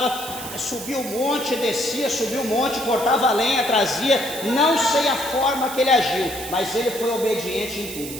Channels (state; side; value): noise; right; hiss, 10 dB below the sound